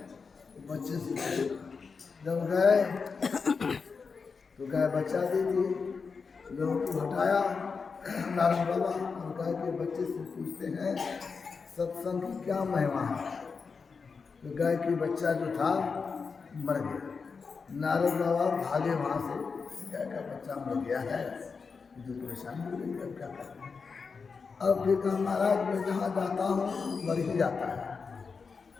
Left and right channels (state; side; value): quieter; right; 5.1 dB